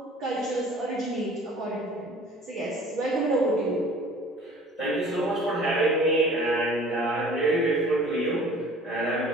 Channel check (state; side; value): normal; both; correlation 0.48